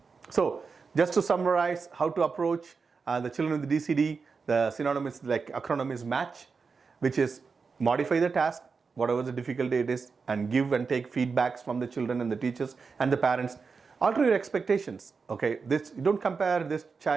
So just to summarize how to approach the children with the DCD, the synonymous like acronym is MATCH, which is modify the task, whatever the difficulty it is, and give and take feedbacks from the children and the teachers and the parents. Alter your expectations. Okay, this, you don't compare this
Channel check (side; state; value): left; quieter; 5.0 dB